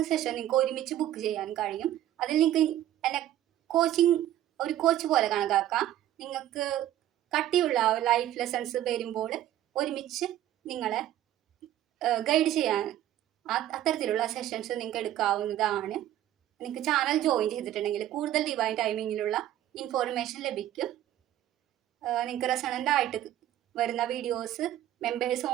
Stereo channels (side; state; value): left; quieter; 12.7 dB